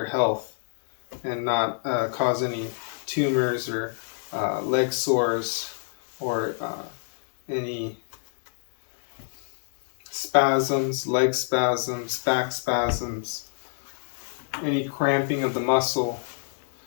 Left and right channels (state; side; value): silent; right; 61 dB below the other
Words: health, and not cause any tumors or leg sores or any spasms, leg spasms, back spasms, any cramping of the muscle.